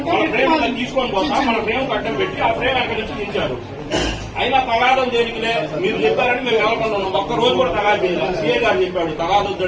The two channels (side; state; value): both; identical; correlation 1.00